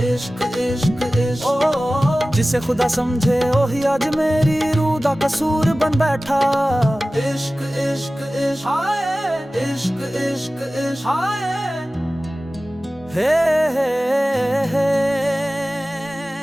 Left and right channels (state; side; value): normal; both; correlation 0.97